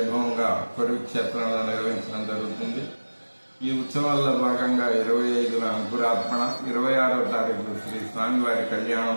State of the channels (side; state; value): both; inverted; correlation -1.00